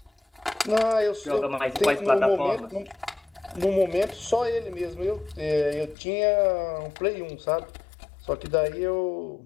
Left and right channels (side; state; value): right; drops out; at 6.0 s